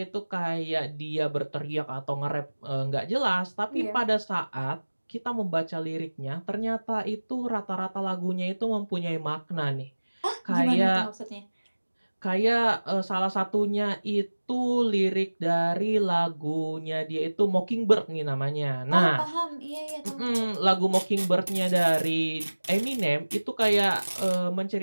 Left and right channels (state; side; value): inverted; both; correlation -1.00